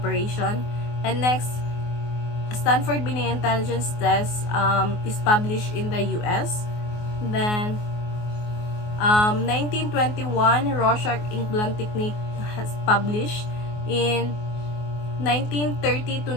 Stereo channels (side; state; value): right; late; 24 ms